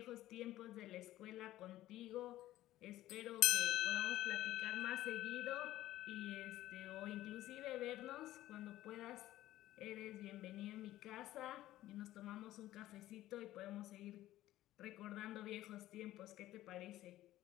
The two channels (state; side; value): quieter; right; 14.9 dB